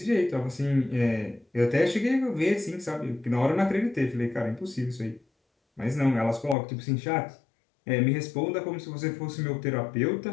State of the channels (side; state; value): right; drops out; at 6.6 s